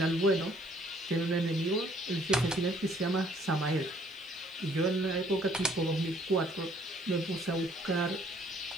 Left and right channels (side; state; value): left; noise; hiss, 29 dB below the sound